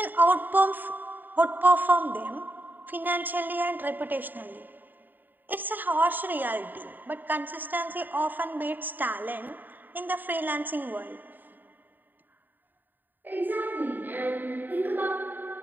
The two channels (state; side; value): late; left; 0.090 ms